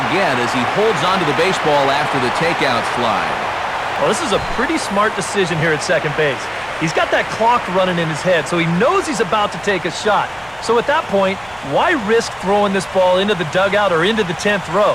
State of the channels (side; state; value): right; noise; rumble, 27 dB below the sound